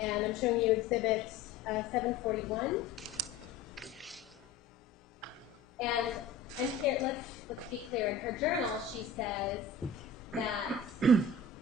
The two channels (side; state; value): right; quieter; 4.1 dB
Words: I'm showing you Exhibit 741. And here, let's be clear. In her journal, she says that